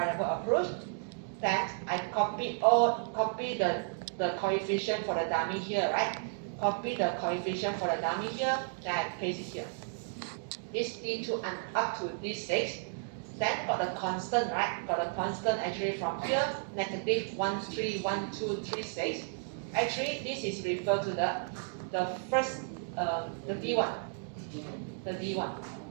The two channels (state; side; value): silent; left; digital silence